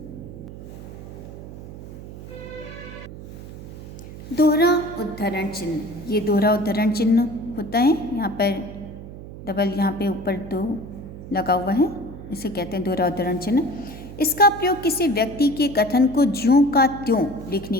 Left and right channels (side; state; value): right; noise; hum, 13 dB below the sound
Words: दोहरा उद्धरण चिन्ह, ये दोहरा उद्धरण चिन्ह होता है। यहाँ पर डबल, यहाँ पे ऊपर दो लगा हुआ है, इसे कहते हैं दोहरा उद्धरण चिन्ह। इसका प्रयोग किसी व्यक्ति के कथन को ज्यों का त्यों